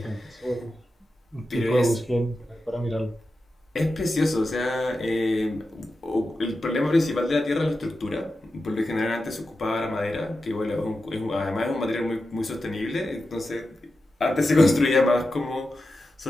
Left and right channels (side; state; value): both; normal; correlation 0.91